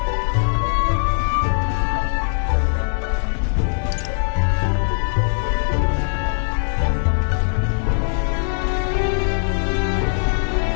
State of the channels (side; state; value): right; silent; digital silence